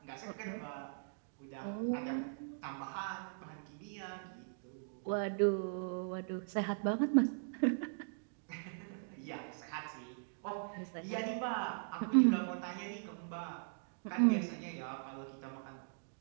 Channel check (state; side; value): silent; left; digital silence